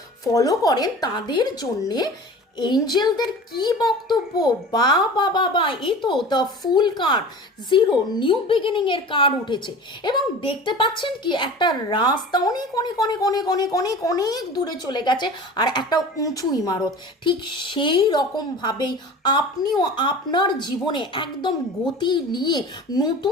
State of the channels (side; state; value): both; normal; correlation 0.38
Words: ফলো করেন, তাদের জন্যে এঞ্জেলদের কি বক্তব্য। বা বা বা বা, এই তো the fool card, zero new beginning এর কার্ড উঠেছে এবং দেখতে পাচ্ছেন কি একটা রাস্তা অনেক অনেক অনেক অনেক অনেক অনেক অনেক দূরে চলে গেছে আর একটা উঁচু ইমারত। ঠিক সেই রকমভাবেই আপনিও আপনার জীবনে একদম গতি নিয়ে